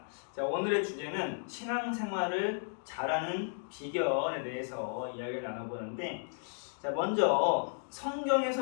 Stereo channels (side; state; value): right; silent; digital silence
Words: 자, 오늘의 주제는 신앙생활을 잘하는 비결에 대해서 이야기를 나눠보는데, 자, 먼저